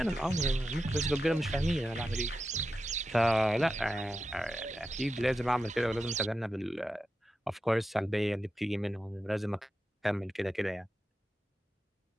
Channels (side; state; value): both; normal; correlation 0.90